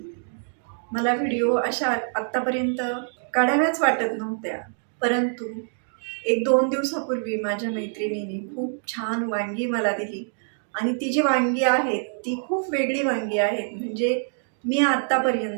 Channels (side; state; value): left; silent; digital silence